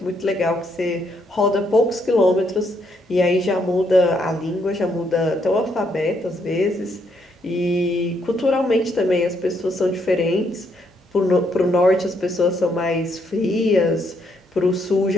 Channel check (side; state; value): both; normal; correlation 0.74